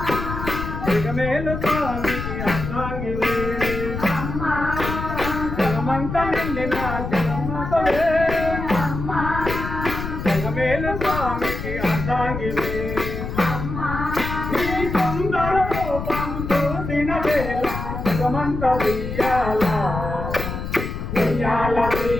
జగమేలు స్వామికి అర్థాంగివే అమ్మా జగమంత నిండిన జగన్మాతవే అమ్మా జగమేలు స్వామికి అర్థాంగివే అమ్మా నీ సుందర రూపం చూసిన వేళ జగమంత ఉయ్యాల ఉయ్యాల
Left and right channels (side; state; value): left; noise; rumble, 5 dB below the sound